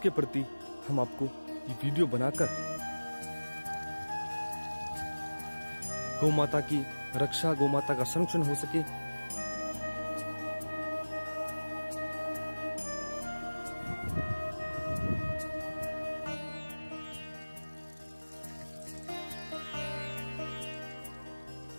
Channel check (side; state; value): both; inverted; correlation -1.00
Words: प्रति हम आपको ये वीडियो बनाकर गौ माता की रक्षा, गौ माता का संरक्षण हो सके,